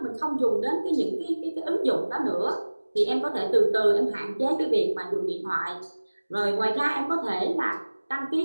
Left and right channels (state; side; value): inverted; both; correlation -1.00